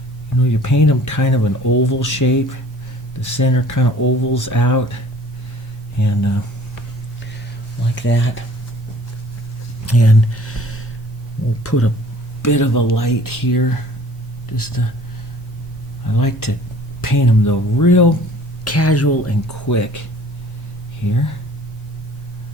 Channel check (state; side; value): normal; both; correlation 0.50